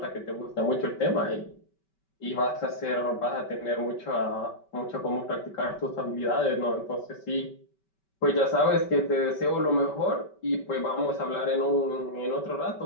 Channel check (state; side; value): late; right; 5.2 ms